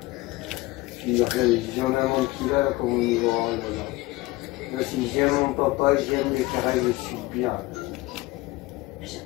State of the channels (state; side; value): quieter; right; 20.2 dB